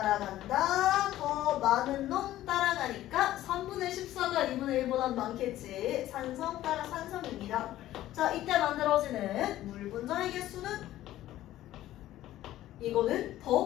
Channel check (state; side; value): quieter; right; 14.2 dB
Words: 더 많은 놈 따라가니까 3분의 14가 2분의 1보다 많겠지. 산성 따라 산성입니다. 자, 이때 만들어지는 물 분자의 개수는 이거는